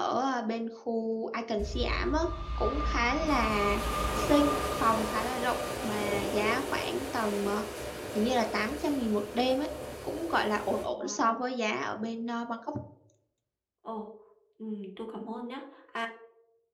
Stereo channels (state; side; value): identical; both; correlation 1.00